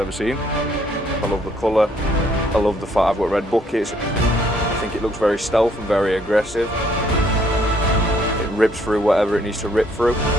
seen. I love the colour, I love the fact I've got red buckets. I think it looks very stealth and very aggressive. It rips through whatever it needs to rip through.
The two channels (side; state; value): both; normal; correlation 0.66